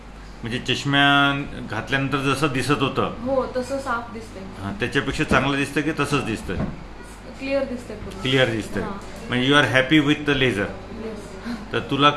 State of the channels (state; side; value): identical; both; correlation 1.00